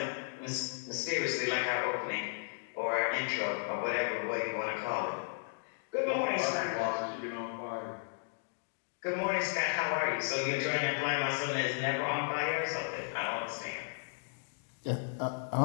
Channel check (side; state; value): right; silent; digital silence